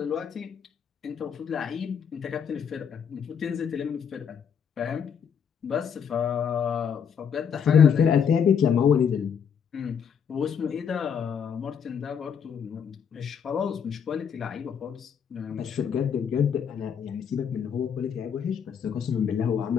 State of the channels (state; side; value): quieter; right; 7.4 dB